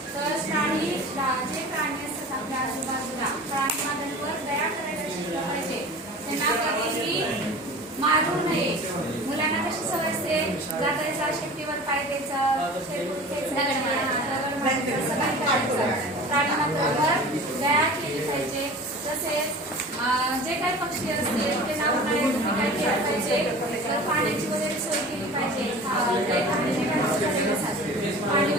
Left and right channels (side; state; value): both; normal; correlation 0.39